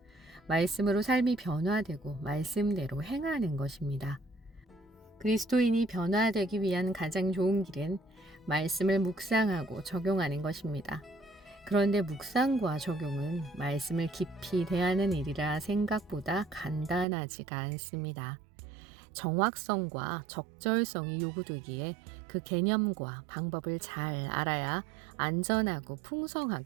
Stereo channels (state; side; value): drops out; left; at 17.1 s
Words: 말씀으로 삶이 변화되고 말씀대로 행하는 것입니다. 그리스도인이 변화되기 위한 가장 좋은 길은 말씀을 묵상하고 적용하는 것입니다. 그런데 묵상과 적용은 말씀을 깊이 대하는 일이라 생각보다 간단하지가 않습니다. 정확성과 적절성이 요구되기에 그 개념과 방법을 잘 알아야 안전하고